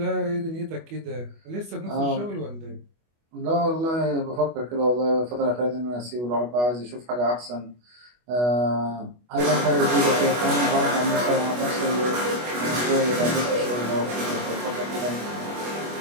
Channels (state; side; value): late; left; 25 ms